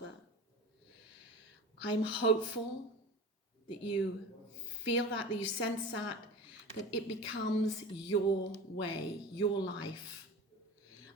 I'm hopeful that you feel that you sense that it becomes your way, your life.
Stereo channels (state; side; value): normal; both; correlation 0.35